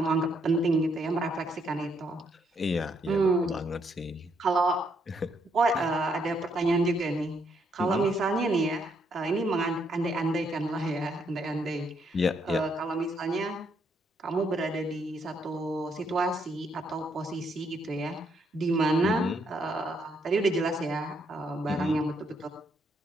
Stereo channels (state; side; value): normal; both; correlation 0.73